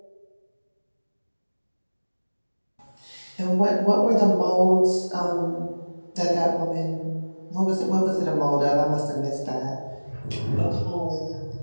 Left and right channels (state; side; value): inverted; both; correlation -1.00